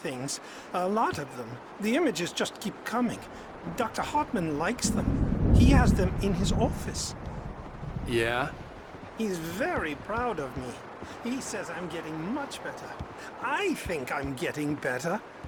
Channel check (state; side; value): identical; both; correlation 1.00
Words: things, a lot of them. The images just keep coming. Dr. Hartman likes them. He has them in his office. Yeah? He's very proud of me. He says I'm getting much better. I think I'm getting better.